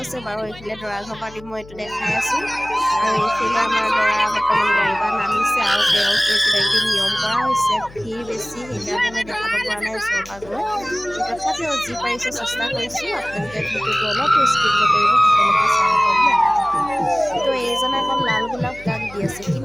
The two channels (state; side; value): noise; left; hum, 20 dB below the sound